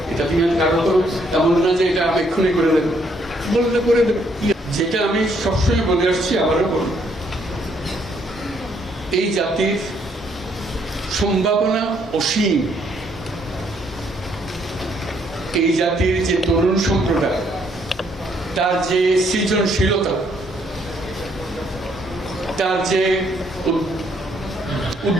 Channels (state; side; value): normal; both; correlation 0.70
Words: এটা তুমি কারণ তো এমন না যে এটা আমি এক্ষুনি করে দেবো, বললে করে দেবো। যেটা আমি সবসময় বলে আসছি, আবারও বলি, এই জাতির সম্ভাবনা অসীম। এই জাতির যে তরুণ সম্প্রদায়, তার যে সৃজনশীলতা, তার যে